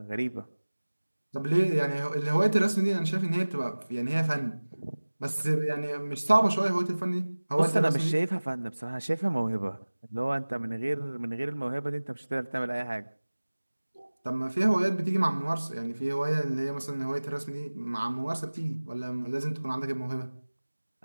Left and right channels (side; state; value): both; inverted; correlation -1.00